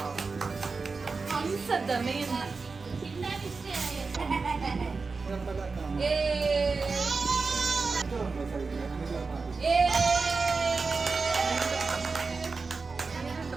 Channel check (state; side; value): quieter; left; 4.3 dB